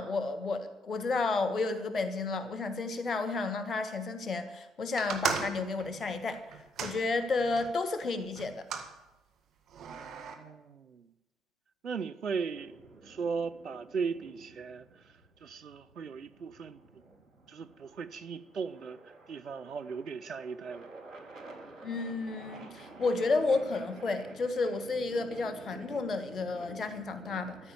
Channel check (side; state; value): both; normal; correlation 0.76